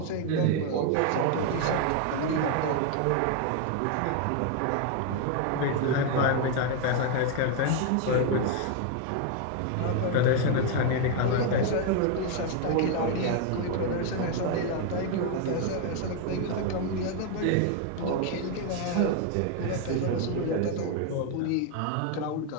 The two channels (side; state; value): both; different; correlation 0.01